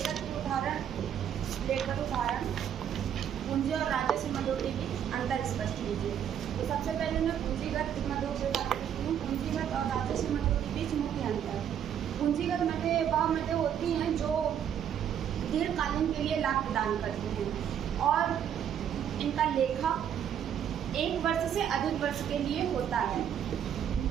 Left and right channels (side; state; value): left; quieter; 9.2 dB